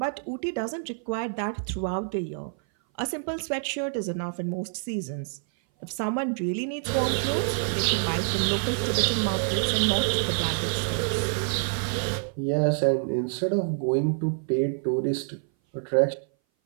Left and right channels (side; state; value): left; silent; 58 dB below the other